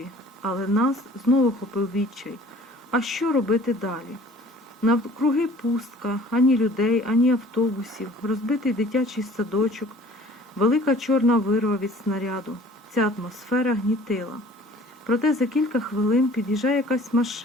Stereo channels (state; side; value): normal; both; correlation 0.50